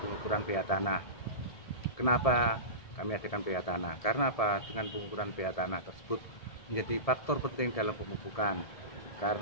pengukuran pH tanah. Kenapa kami adakan pH tanah? Karena apa? Dengan pengukuran pH tanah tersebut menjadi faktor penting dalam pemupukan.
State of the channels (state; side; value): late; right; 1.7 ms